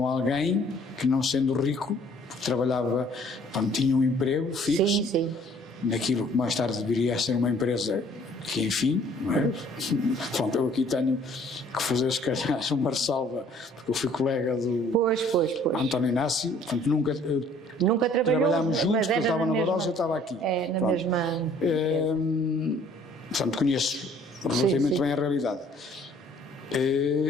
alguém que, não sendo rico, porque trabalhava, tinha um emprego fixo, sim. naquilo que mais tarde viria a ser uma empresa que, enfim, não é? Pronto, eu aqui tenho que fazer, se calhar, uma ressalva, porque eu fui colega do António Inácio, portanto, nunca trabalhámos juntos, porque eu estava na Barossa e eu estava aqui. Na mesma... portanto, conheço relativamente bem a realidade.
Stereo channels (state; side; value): normal; both; correlation 0.57